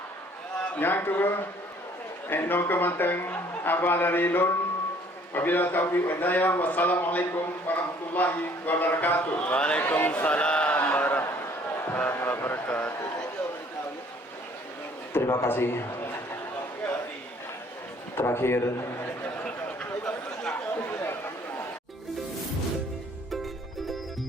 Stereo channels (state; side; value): normal; both; correlation 0.58